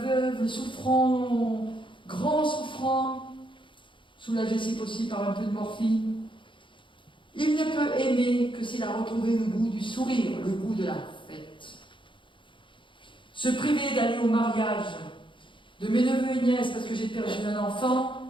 le souffrant, grand souffrant, soulagé si possible par un peu de morphine, il ne peut aimer que s'il a retrouvé le goût du sourire, le goût de la fête. Se priver d'aller au mariage de mes neveux et nièces parce que j'ai perdu un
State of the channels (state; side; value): late; right; 0.24 ms